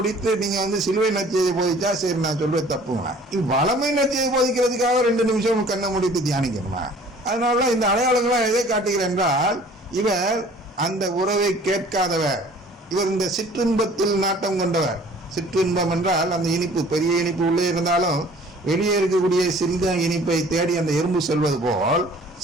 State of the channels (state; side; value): normal; both; correlation 0.51